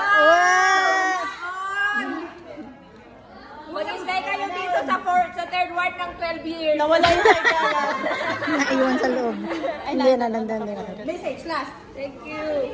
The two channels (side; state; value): both; identical; correlation 1.00